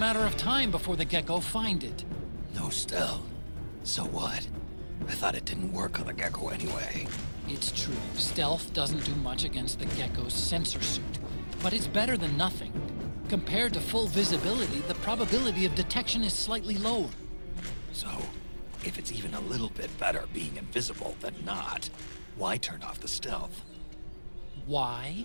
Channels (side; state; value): both; inverted; correlation -1.00